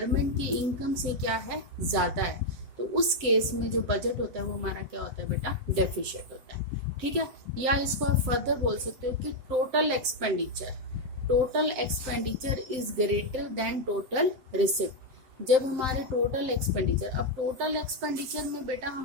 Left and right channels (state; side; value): late; left; 7.7 ms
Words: की इनकम से क्या है, ज़्यादा है, तो उस केस में जो बजट होता है वो हमारा क्या होता है बेटा, डेफिशिएट होता है। ठीक है, या इसको आप फर्दर बोल सकते हो कि total expenditure is greater then total receipt. जब हमारे टोटल एक्सपेंडिचर, अब टोटल एक्सपेंडिचर में बेटा